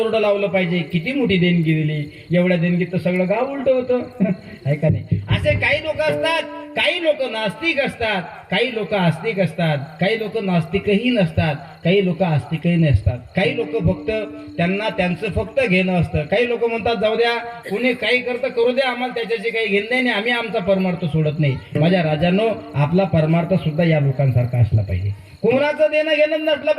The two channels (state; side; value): identical; both; correlation 1.00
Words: लावलं पाहिजे. किती मोठी देणगी दिली, एवढ्या देणगीत तर सगळं गाव उलट होतं. आहे का नाही? असे काही लोक असतात. काही लोक नास्तिक असतात, काही लोक आस्तिक असतात, काही लोक नास्तिकही नसतात, काही लोक आस्तिकही नसतात. काही लोक फक्त त्यांना त्यांचं फक्त घेणं असतं. काही लोक म्हणतात जाऊ द्या, कोणी काही करतं करू द्या, आम्हाला त्याच्याशी काही घेणं नाही, आम्ही आमचा परमार्थ सोडत नाही. माझ्या राजांनो, आपला परमार्थ सुद्धा या लोकांसारखा असला पाहिजे. कोणाचं देणं घेणं नसलं